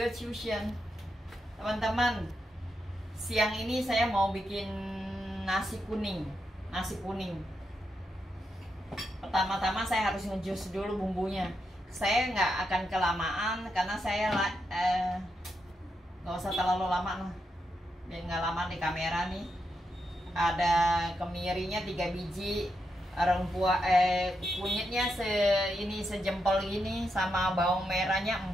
Fusion. Teman-teman, siang ini saya mau bikin nasi kuning. Pertama-tama saya harus ngejus dulu bumbunya. Saya nggak akan kelamaan karena saya nggak usah terlalu lama lah, biar nggak lama di kamera nih. Ada kemirinya 3 biji, kunyitnya sejempol gini, sama bawang merahnya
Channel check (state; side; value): normal; both; correlation 0.84